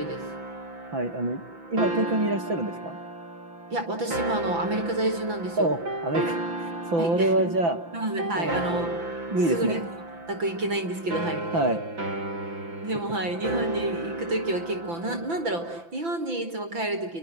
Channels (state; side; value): late; left; 5.9 ms